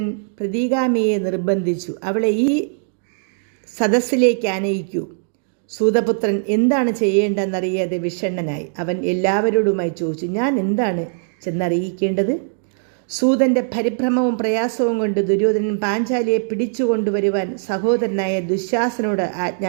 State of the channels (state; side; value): silent; left; digital silence